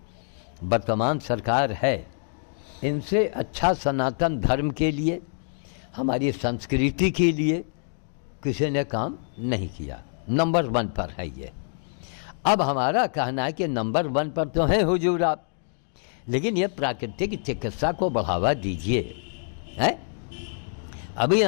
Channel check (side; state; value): right; silent; digital silence